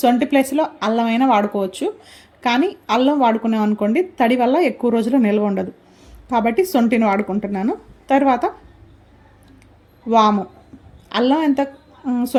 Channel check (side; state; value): both; identical; correlation 1.00